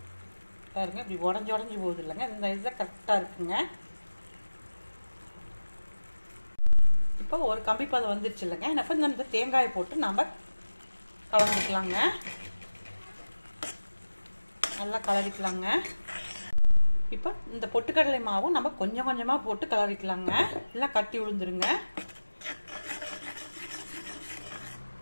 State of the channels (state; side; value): inverted; both; correlation -1.00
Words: பாருங்க, இப்படி உடஞ்சி போகுது இல்லைங்க. இந்த இதில் கரெக்டாக இருக்குங்க. இப்போ ஒரு கம்பி பதம் வந்துருச்சு இல்லைங்க. இப்போ இந்த தேங்காயை போட்டு நம்ம கலந்துக்கலாங்க. நல்லா கலரிக்கலாங்க. இப்போ இந்த பொட்டுக்கடலை மாவும் நம்ம கொஞ்சம் கொஞ்சமாக போட்டு கலரிக்கலாங்க, இல்லை கட்டி விழுந்துருங்க.